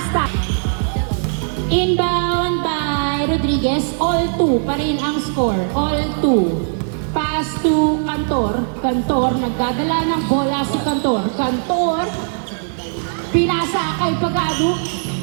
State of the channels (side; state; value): left; silent; digital silence